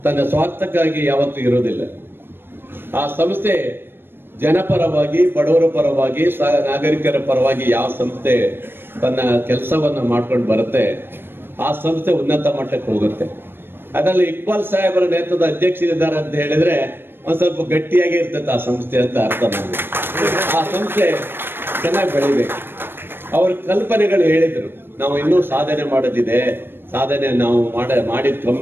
ತನ್ನ ಸ್ವಾರ್ಥಕ್ಕಾಗಿ ಯಾವತ್ತೂ ಇರುವುದಿಲ್ಲ. ಆ ಸಂಸ್ಥೆ ಜನಪರವಾಗಿ, ಬಡವರ ಪರವಾಗಿ, ನಾಗರಿಕರ ಪರವಾಗಿ ಯಾವ ಸಂಸ್ಥೆ ತನ್ನ ಕೆಲಸವನ್ನು ಮಾಡ್ಕೊಂಡು ಬರುತ್ತೆ ಆ ಸಂಸ್ಥೆ ಉನ್ನತ ಮಟ್ಟಕ್ಕೆ ಹೋಗುತ್ತೆ. ಅದರಲ್ಲಿ ಇಕ್ಬಾಲ್ ಸಾಹೇಬರ ನೇತೃತ್ವದ ಅಧ್ಯಕ್ಷರಿದ್ದಾರೆ ಅಂತ ಹೇಳಿದ್ರೆ ಒಂದ್ ಸ್ವಲ್ಪ ಗಟ್ಟಿಯಾಗಿ ಇರ್ತದೆ ಆ ಸಂಸ್ಥೆ ಅಂತ ಅರ್ಥ ಮಾಡಿ. ಆ ಸಂಸ್ಥೆ ಚೆನ್ನಾಗಿ ಬೆಳಿಬೇಕು. ಅವ್ರ ಕಲ್ಪನೆಗಳು ಹೇಳಿದ್ರು, ನಾವು ಇನ್ನೂ ಸಾಧನೆ ಮಾಡೋದಿದೆ, ಸಾಧನೆ ನಾವು ಮಾಡಿದ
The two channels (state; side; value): late; left; 0.10 ms